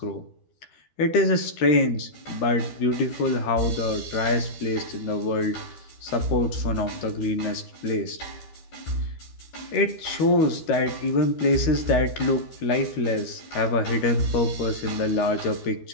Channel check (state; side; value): late; right; 13 ms